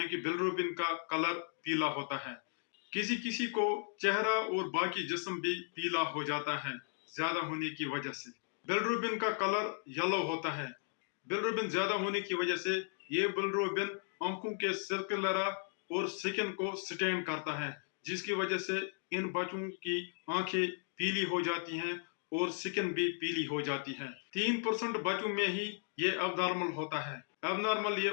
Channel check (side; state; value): right; silent; 54 dB below the other